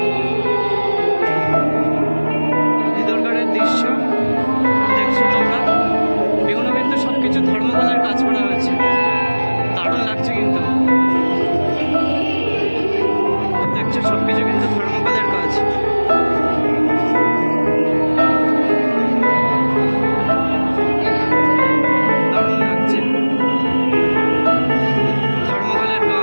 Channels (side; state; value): both; inverted; correlation -1.00